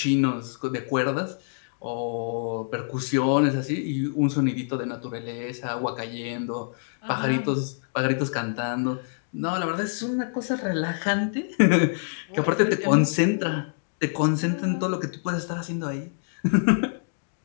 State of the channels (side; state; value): right; silent; digital silence